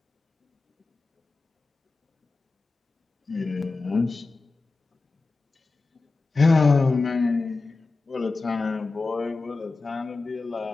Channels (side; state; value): right; quieter; 3.7 dB